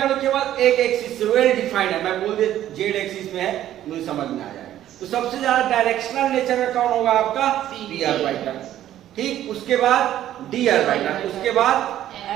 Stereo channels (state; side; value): quieter; left; 12.2 dB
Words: में केवल एक एक्सिस वेल डिफाइंड है, मैं बोल दे जेड एक्सिस में है, मुझे समझ में आ जाएगा। तो सबसे ज्यादा डायरेक्शनल नेचर में कौन होगा आपका, पी ऑर्बिटल। ठीक उसके बाद डी ऑर्बिटल, उसके बाद